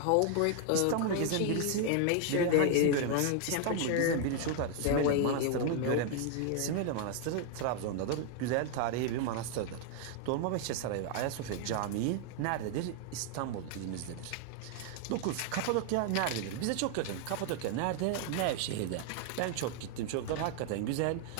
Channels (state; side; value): different; both; correlation 0.00